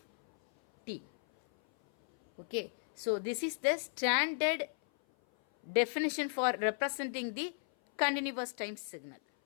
t. Okay, so this is the standard definition for representing the continuous time signal.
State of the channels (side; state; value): right; silent; 55 dB below the other